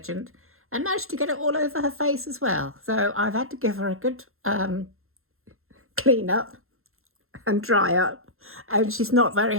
and managed to get it all over her face as well. So I've had to give her a good clean up and dry up, and she's not very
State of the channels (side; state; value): left; late; 0.62 ms